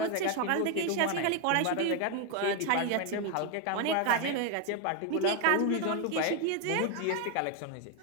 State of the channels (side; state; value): both; different; correlation 0.01